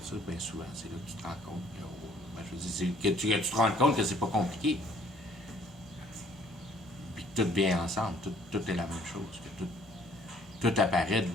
ça, bien souvent, c'est là que tu te rends compte que, je veux dire, que tu te rends compte que c'est pas compliqué. Puis que tout vient ensemble, tout est la même chose, que tout apparaît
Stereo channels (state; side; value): normal; both; correlation 0.60